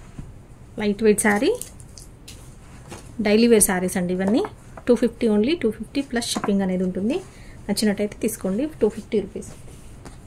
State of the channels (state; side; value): identical; both; correlation 1.00